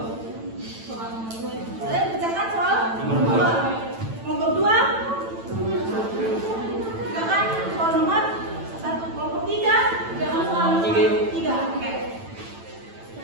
Soal nomor 2. Kalian kerjakan soal Nomor dua. Nomor 2. Kerjakan soal nomor 1. Kelompok 3. Kerjakan soal nomor 3. Oke.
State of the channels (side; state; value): left; late; 9.0 ms